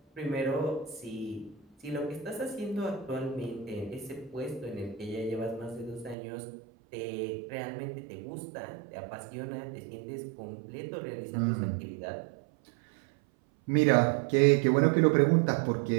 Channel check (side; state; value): left; drops out; at 6.2 s